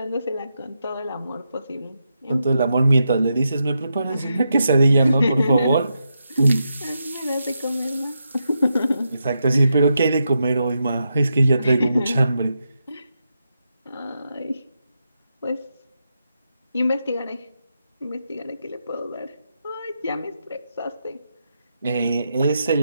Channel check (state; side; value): inverted; both; correlation -0.85